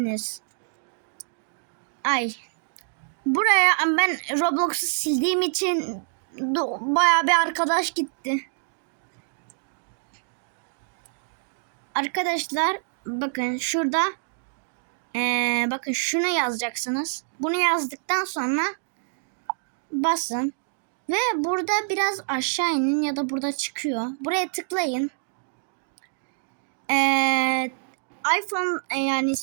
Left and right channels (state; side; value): silent; left; digital silence